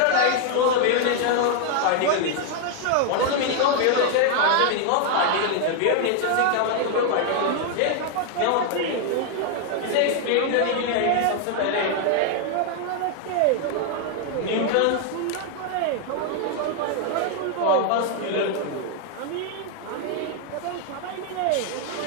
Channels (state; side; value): different; both; correlation 0.00